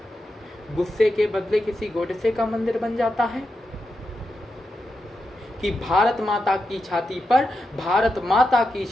गुस्से के बदले किसी गोडसे का मंदिर बन जाता है। कि भारत माता की छाती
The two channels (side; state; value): both; normal; correlation 0.87